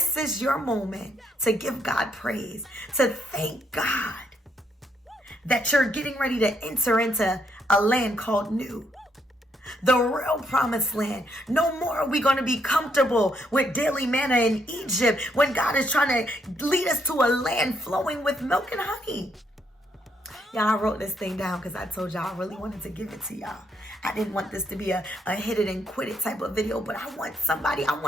is your moment to give God praise, to thank God that you're getting ready to enter into a land called new. The real promised land. No more are we going to be comfortable with daily manna in Egypt when God is trying to lead us to a land flowing with milk and honey. Y'all, I wrote this thing down because I told y'all I really wanted to give it to y'all. I didn't want this to be a hit it and quit it type of video, but I want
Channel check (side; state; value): both; normal; correlation 0.74